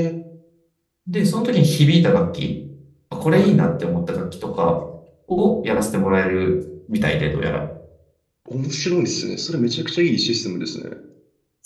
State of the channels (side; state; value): both; identical; correlation 1.00